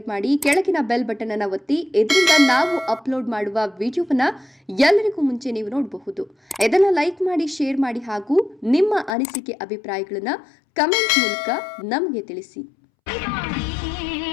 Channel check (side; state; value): right; drops out; at 9.2 s